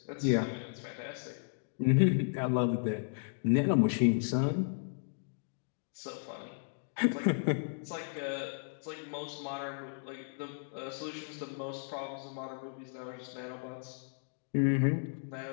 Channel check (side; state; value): right; silent; digital silence